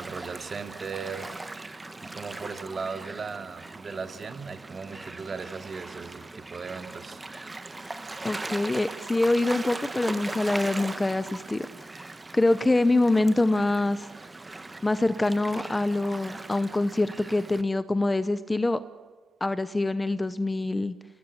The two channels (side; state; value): both; normal; correlation 0.97